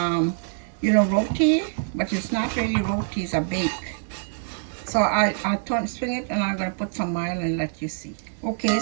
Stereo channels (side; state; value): left; silent; digital silence